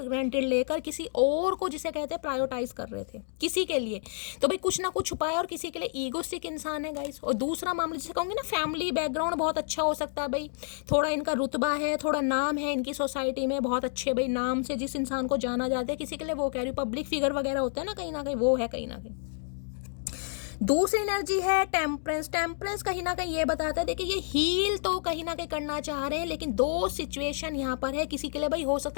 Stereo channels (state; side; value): silent; right; digital silence